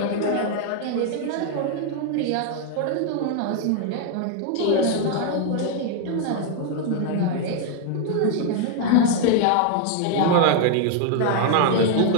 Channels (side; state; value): both; different; correlation 0.00